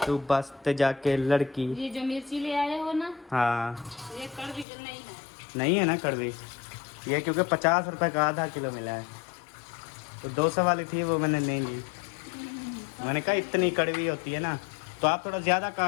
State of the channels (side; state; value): right; drops out; at 4.7 s